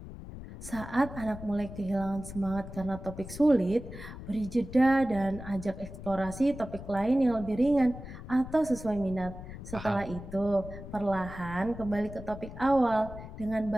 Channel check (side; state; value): left; noise; rumble, 12 dB below the sound